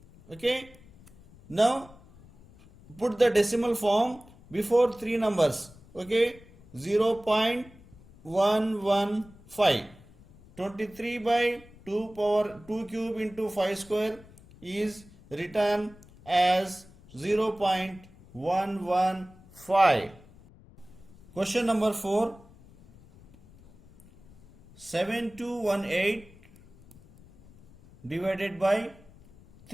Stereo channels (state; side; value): noise; left; rumble, 24 dB below the sound